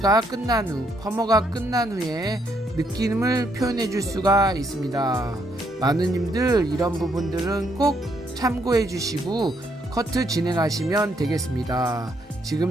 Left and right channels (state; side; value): normal; both; correlation 0.73